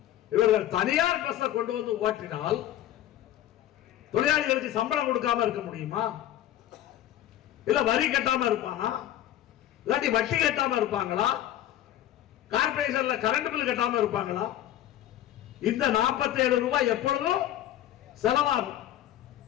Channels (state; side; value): quieter; right; 12.6 dB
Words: இவர்கள் தனியார் பஸ்ஸை கொண்டு வந்து ஓட்டினால் தொழிலாளிகளுக்கு சம்பளம் கொடுக்காம இருக்க முடியுமா? இல்ல வரி கட்டாம இருப்பானா? இல்லாட்டி வட்டி கட்டாம இருப்பாங்களா? கார்பரேஷன்ல கரண்ட் பில் கட்டாம இருப்பாங்களா? இந்த 47 ரூபாய் எப்பொழுதும் செலவாகும்.